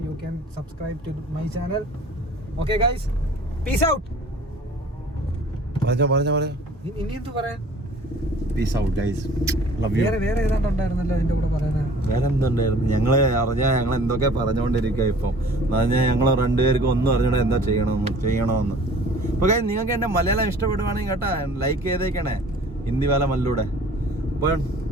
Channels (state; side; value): normal; both; correlation 0.49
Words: you can subscribe to my channel. Okay guys, peace out. പറഞ്ഞോ. ഇനി എന്ത് പറയാൻ? Peace out guys. Love you. വേറെ ഏതാണ്ടുണ്ടായിരുന്നല്ലോ അതിന്റെ കൂടെ പറയാനാ. വേറെ എന്തുണ്ടായിരുന്നു? ഞങ്ങൾ എന്തൊക്കെ പറഞ്ഞുകൊണ്ടിരിക്കുക. ഇപ്പം പറഞ്ഞാൽ ഞങ്ങൾ രണ്ടുപേർക്കും ഒന്നും അറിഞ്ഞൂടെ എന്താ ചെയ്യണമെന്ന്. അപ്പൊ ഗൈസ്, നിങ്ങൾക്ക് എന്റെ മലയാളം ഇഷ്ടപ്പെടുവാണെങ്കിൽ കേട്ടാ ലൈക്ക് ചെയ്തേക്കണേ. ഹിന്ദിവാല മല്ലൂടെ. അപ്പോൾ